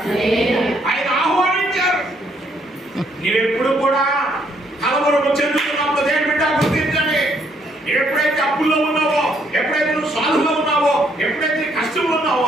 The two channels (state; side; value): normal; both; correlation 0.70